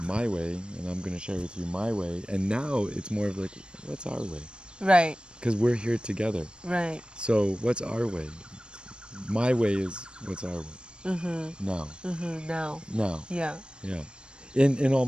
way, and I'm going to share with you my way. And now it's more of like, what's our way? Right. Because we're here together. Right. So what's our way? My way is what's our way. Now. Now. Yeah. In all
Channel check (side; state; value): left; late; 0.054 ms